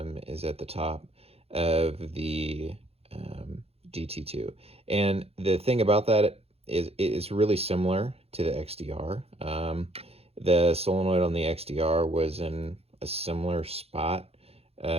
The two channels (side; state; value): left; late; 0.29 ms